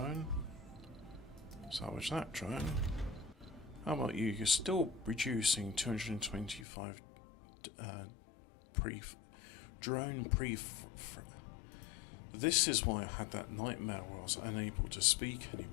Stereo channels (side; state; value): right; drops out; at 6.7 s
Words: Salvage that drone. How about you? You're still reducing 225 drone pre. This is why I had that nightmare where I was unable to speak